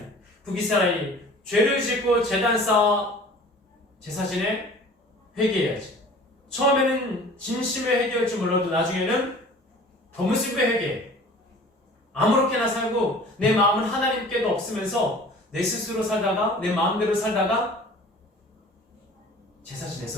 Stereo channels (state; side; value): normal; both; correlation 0.45